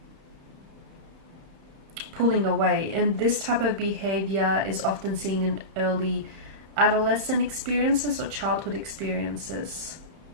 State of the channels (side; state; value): left; late; 31 ms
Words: pulling away. And this type of behavior is often seen in early adolescent experiences or childhood experiences.